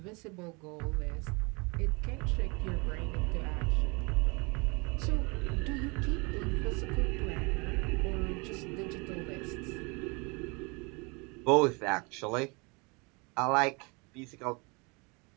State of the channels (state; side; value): quieter; left; 29.4 dB